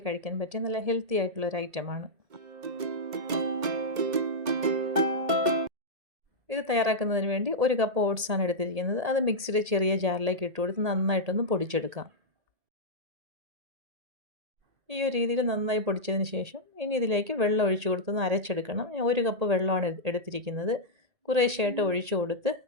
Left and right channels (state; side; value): late; left; 1.8 ms